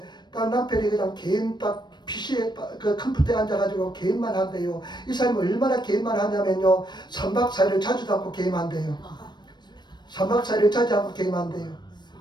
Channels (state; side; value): late; right; 0.21 ms